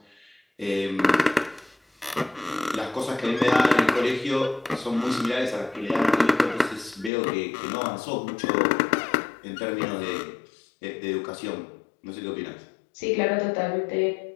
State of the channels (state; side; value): drops out; right; at 7.1 s